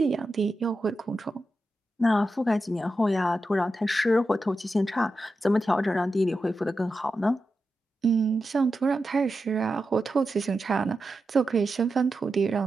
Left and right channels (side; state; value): both; normal; correlation 0.90